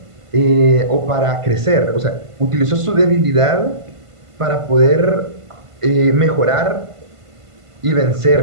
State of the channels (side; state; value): left; late; 1.5 ms